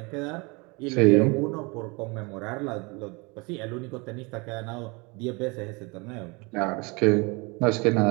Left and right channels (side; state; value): left; quieter; 28.0 dB